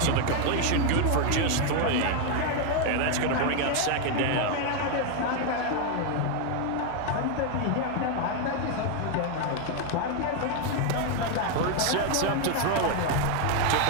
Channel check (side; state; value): both; different; correlation 0.01